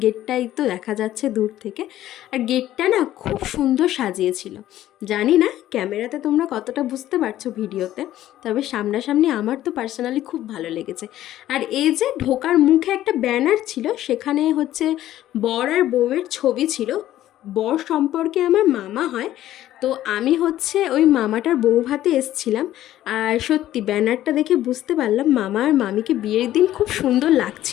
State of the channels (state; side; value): quieter; right; 13.4 dB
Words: গেটটাই তো দেখা যাচ্ছে দূর থেকে। আর গেটটা না খুব সুন্দর সাজিয়েছিল। জানি না ক্যামেরাতে তোমরা কতটা বুঝতে পারছো ভিডিওতে, তবে সামনাসামনি আমার তো পার্সোনালি খুব ভালো লেগেছে। আর এই যে ঢোকার মুখে একটা ব্যানার ছিল, সেখানে হচ্ছে বর আর বউয়ের ছবি ছিল। বর সম্পর্কে আমার মামা হয়, তো আমি হচ্ছে ওই মামাটার বউ ভাতে এসছিলাম। আর সত্যি ব্যানারটা দেখে বুঝতে পারলাম মামা আর মামিকে বিয়ের দিন খুব সুন্দর